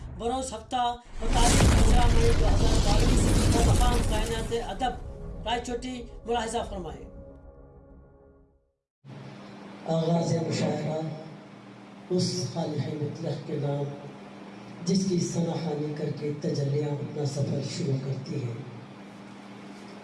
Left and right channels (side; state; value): both; identical; correlation 1.00